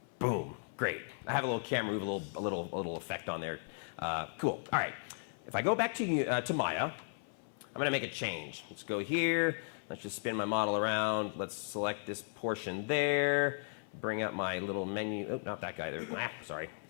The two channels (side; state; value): right; silent; 54 dB below the other